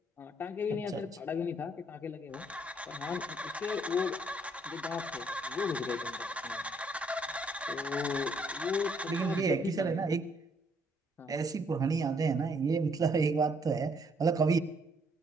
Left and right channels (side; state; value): both; normal; correlation 0.68